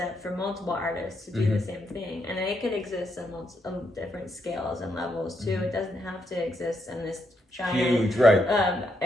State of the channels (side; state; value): both; normal; correlation 0.79